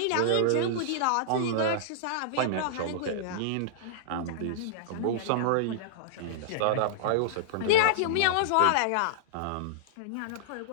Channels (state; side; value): different; both; correlation -0.02